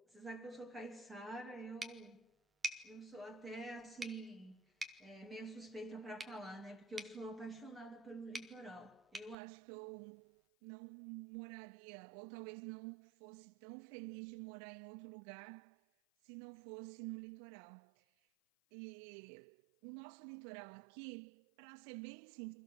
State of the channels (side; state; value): left; drops out; at 9.3 s